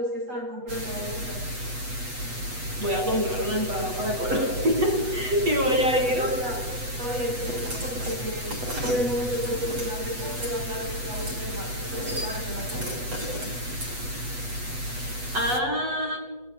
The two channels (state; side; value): late; left; 8.1 ms